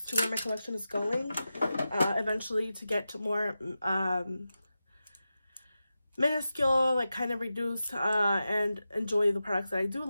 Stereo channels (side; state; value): both; inverted; correlation -0.92